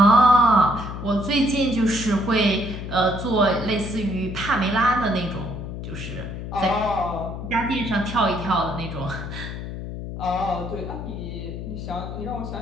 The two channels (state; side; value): noise; left; hum, 8 dB below the sound